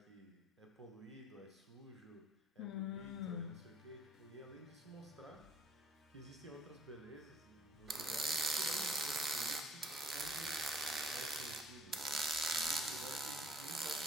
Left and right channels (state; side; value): normal; both; correlation 0.58